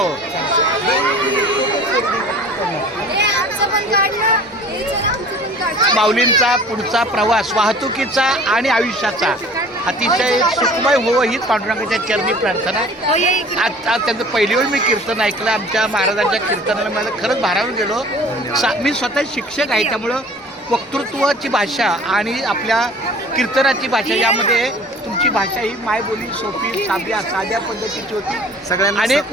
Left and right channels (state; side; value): normal; both; correlation 0.46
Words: माऊलींचा पुढचा प्रवास वाहतुकीचा आणि आयुष्याचा अतिशय सुखमय होवं हीच पांडुरंगाच्या चरणी प्रार्थना. आज त्यांचं पहिली वेळ मी कीर्तन ऐकलं. आमच्या महाराजांच्या कीर्तनाला मला खरंच भारावून गेलो. मी स्वतः शिक्षक आहे, त्यामुळं वक्तृत्वाची भाषा आणि आपल्या कीर्तनाची भाषा यामध्ये तुमची भाषा ही मायबोली सोपी साध्या पद्धतीची होती. सगळ्यांना अनेक